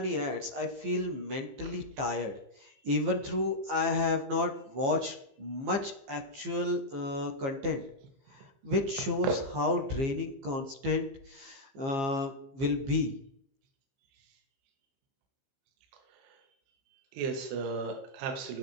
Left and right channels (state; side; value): late; left; 15 ms